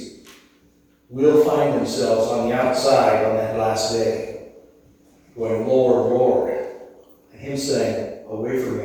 will find themselves on the outside on that last day, going, Lord, Lord, and him saying, away from me,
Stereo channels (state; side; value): identical; both; correlation 1.00